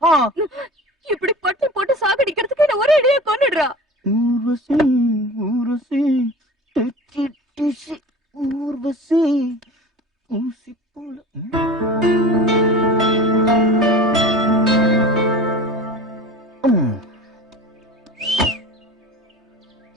இப்படி பட்டு போட்டு சாகடிக்கிறதுக்கு என்ன ஒரே அடியா கொன்னுடுறா. ஊர்வசி ஊர்வசி ஊர்வசி ஊசி போல.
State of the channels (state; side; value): normal; both; correlation 0.37